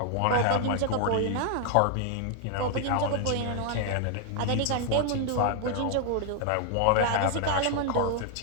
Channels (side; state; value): both; different; correlation 0.00